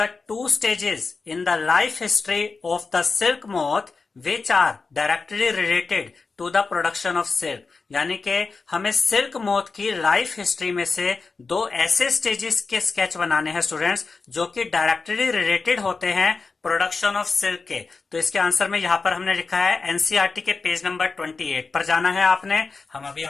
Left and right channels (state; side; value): quieter; right; 4.3 dB